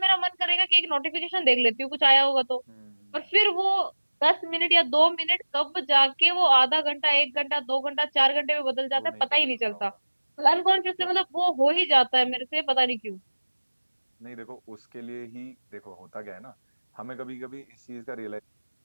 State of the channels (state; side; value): inverted; both; correlation -1.00